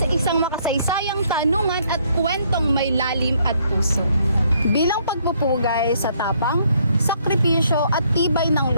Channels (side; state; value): both; inverted; correlation -0.68